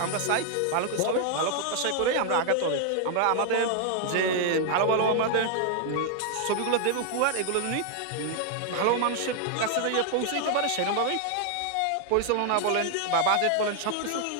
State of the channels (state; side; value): different; both; correlation 0.00